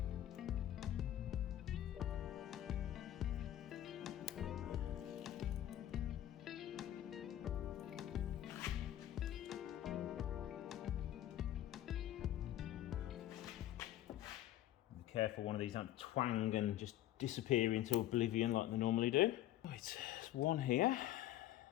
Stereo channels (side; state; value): right; quieter; 13.0 dB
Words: careful one of these don't twang and just disappear into oblivion like they normally do. Right, there's one here.